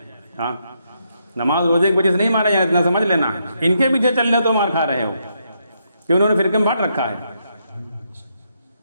हाँ, नमाज रोजे की वजह से नहीं मारे जा रहे, इतना समझ लेना। इनके पीछे चल रहे हो तो मार खा रहे हो, कि उन्होंने फिरके में बांट रखा है।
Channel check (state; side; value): inverted; both; correlation -0.78